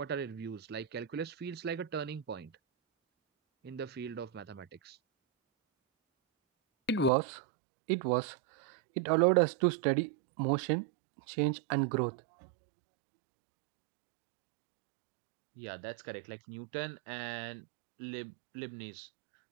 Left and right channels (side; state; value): left; drops out; at 7.1 s